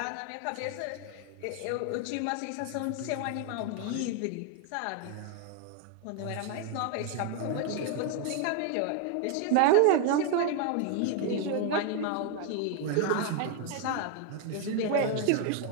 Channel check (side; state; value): both; different; correlation 0.01